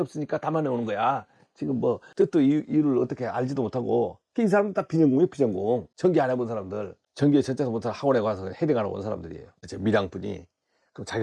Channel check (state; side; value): identical; both; correlation 1.00